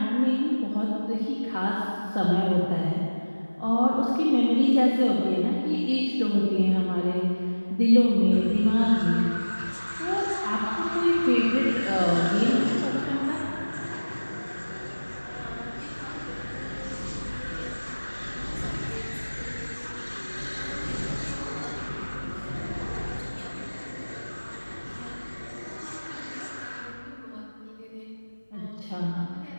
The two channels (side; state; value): both; inverted; correlation -1.00